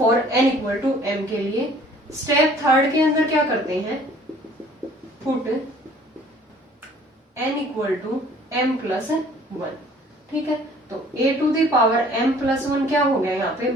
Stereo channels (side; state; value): both; normal; correlation 0.54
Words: n equal to m के लिए। स्टेप थर्ड के अंदर क्या करते हैं, put n equal to m plus 1। ठीक है, तो a to the power m plus 1 क्या हो गया, यहाँ पे